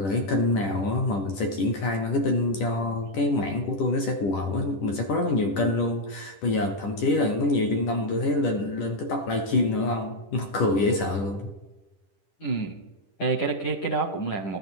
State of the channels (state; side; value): late; right; 10 ms